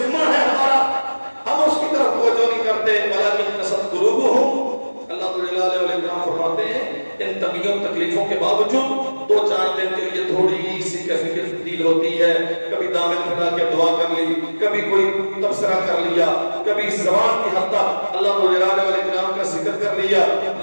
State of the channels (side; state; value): both; inverted; correlation -1.00